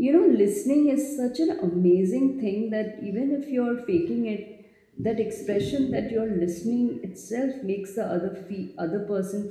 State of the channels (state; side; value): identical; both; correlation 1.00